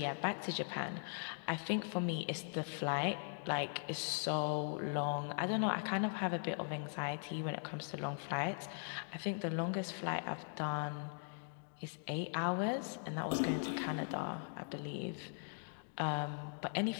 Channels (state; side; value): silent; right; digital silence